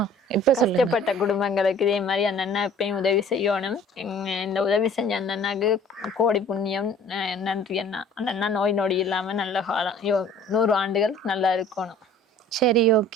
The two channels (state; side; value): normal; both; correlation 0.50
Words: இப்ப சொல்லுங்க. கஷ்டப்பட்ட குடும்பங்களுக்கு இதே மாதிரி அந்த அண்ணா எப்பயும் உதவி செய்யணும். இந்த உதவி செஞ்ச அந்த அண்ணாக்கு கோடி புண்ணியம். நன்றி அண்ணா. அந்த அண்ணா நோய் நொடி இல்லாம நல்ல காலம் 100 ஆண்டுகள் நல்லா இருக்கணும். சரி,